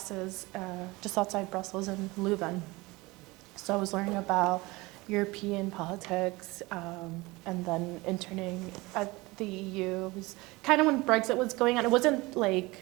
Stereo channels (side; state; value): left; quieter; 22.4 dB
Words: just outside Brussels in Leuven. So I was learning about European politics, and then interning at the EU. It was kind of when Brexit was going on. It wasn't like